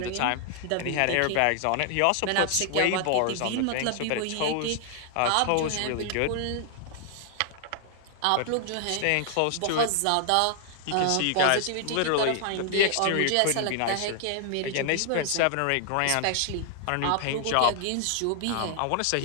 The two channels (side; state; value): both; different; correlation 0.00